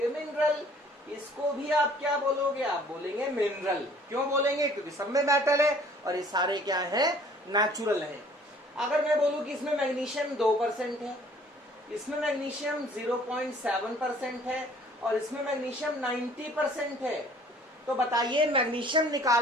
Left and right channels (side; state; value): both; normal; correlation 0.55